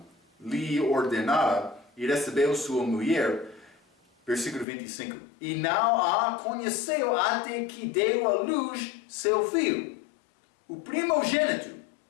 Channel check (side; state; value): right; drops out; at 4.7 s